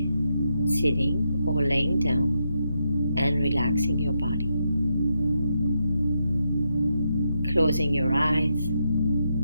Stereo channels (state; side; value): inverted; both; correlation -0.82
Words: sitting or laying down and relaxing your body. Closing your eyes,